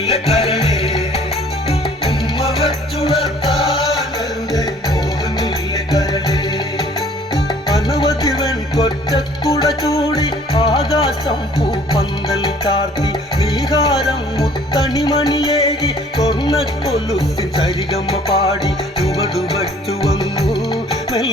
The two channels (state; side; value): normal; both; correlation 0.55